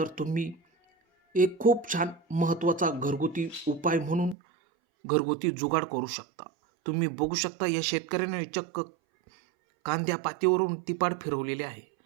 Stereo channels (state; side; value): drops out; left; at 4.4 s